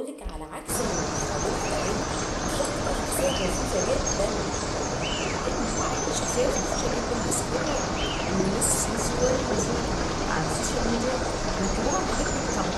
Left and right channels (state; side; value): identical; both; correlation 1.00